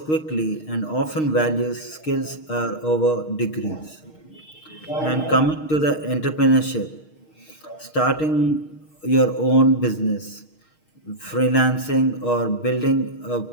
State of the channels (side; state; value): right; late; 6.4 ms